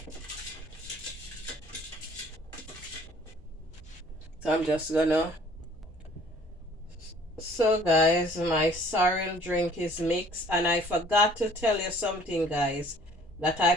So I'm just gonna. So guys, my sorrel drink is mixed, and I forgot to tell you something, guys, that I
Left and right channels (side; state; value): both; normal; correlation 0.55